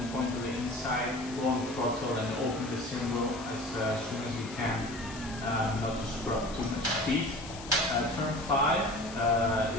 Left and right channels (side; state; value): left; noise; hiss, 14 dB below the sound